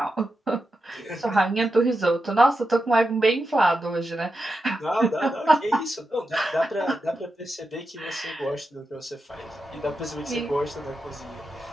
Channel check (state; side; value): normal; both; correlation 0.88